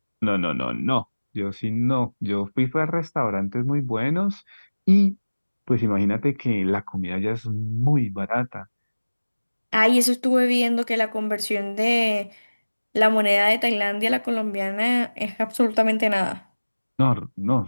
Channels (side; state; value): both; inverted; correlation -1.00